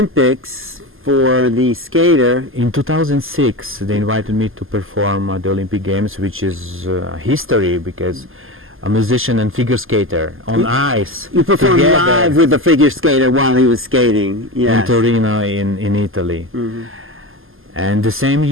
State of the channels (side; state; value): left; late; 0.60 ms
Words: for the skater. In 2006, they invited me to perform at the Olympic Games, which is history because a musician and figure skater on ice. You performed live with the figure skater while he was skating. Yes. In Torino, in Italy. And the same